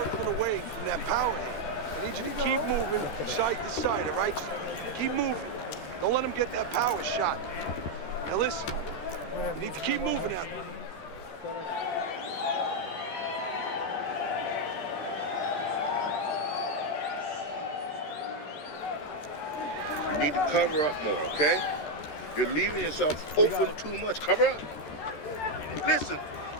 away from that power hand. I need you to keep moving side to side, all right? Keep moving. Don't let him get that power shot. Now listen, you need to keep moving out there. You need to cover up more, okay? You're leaving yourself open too much. Cover up. Listen,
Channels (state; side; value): late; right; 13 ms